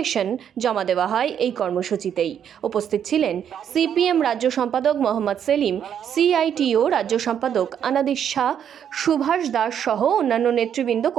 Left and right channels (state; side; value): quieter; left; 8.8 dB